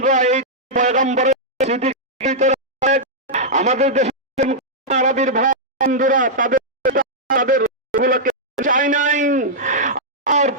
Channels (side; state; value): both; normal; correlation -0.08